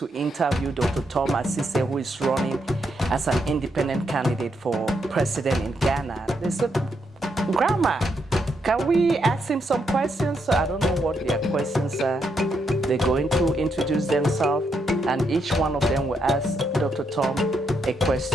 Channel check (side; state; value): both; normal; correlation 0.79